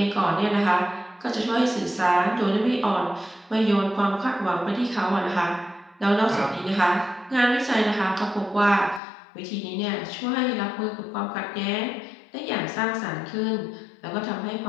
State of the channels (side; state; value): right; drops out; at 9.0 s